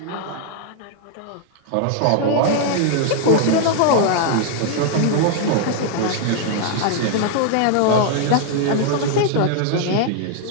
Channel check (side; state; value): both; different; correlation 0.00